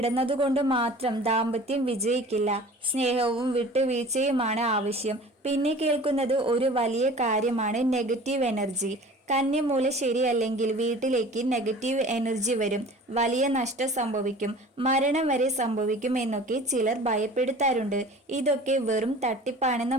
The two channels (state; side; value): normal; both; correlation 0.43